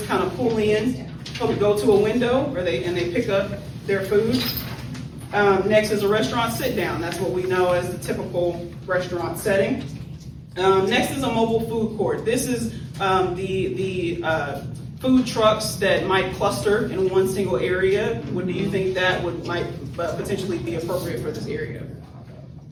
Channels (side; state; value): both; identical; correlation 1.00